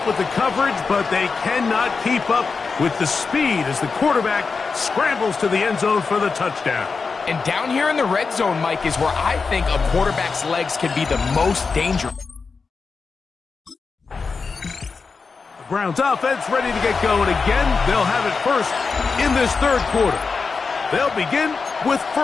with the coverage, but they cannot keep up with the speed as the quarterback scrambles to the end zone for the touchdown. And down here in the red zone, Mike, is where I think a quarterback's legs can be the most dangerous. Browns offense ready to get going again. They'll have it first in this third quarter. They'll begin with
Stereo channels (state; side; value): quieter; right; 4.8 dB